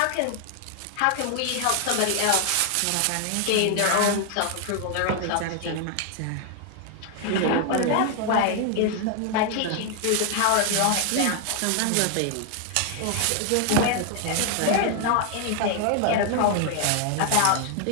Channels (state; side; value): different; both; correlation 0.00